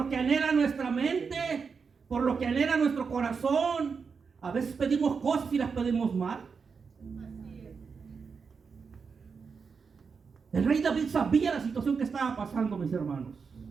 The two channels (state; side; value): quieter; left; 5.5 dB